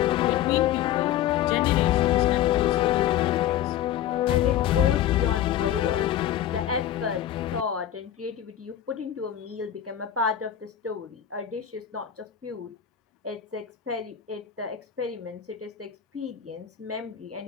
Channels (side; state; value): right; quieter; 11.0 dB